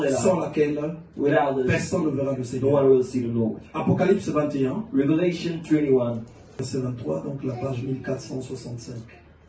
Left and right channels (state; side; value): identical; both; correlation 1.00